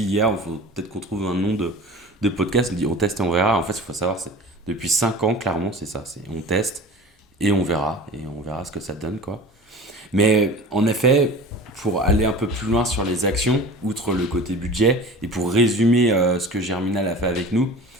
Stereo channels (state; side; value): normal; both; correlation 0.38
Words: hier, il faut peut-être qu'on trouve un nom de podcast. On dit on teste et on verra. En fait, il faut savoir, c'est depuis 5 ans, clairement, c'est ça. C'est on teste et on verra ce que ça donne, quoi. Mais en effet, pour aller un peu plus loin sur les actions, outre le côté budget, et pour résumer ce que Germinal a fait avec nous,